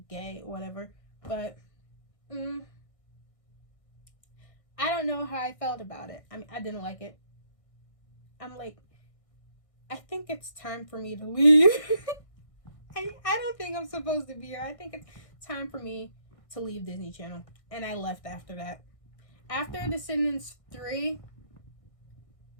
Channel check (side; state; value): right; late; 1.6 ms